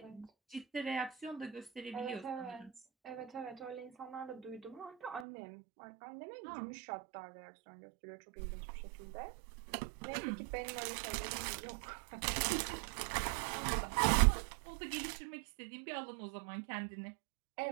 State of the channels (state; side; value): drops out; left; at 5.2 s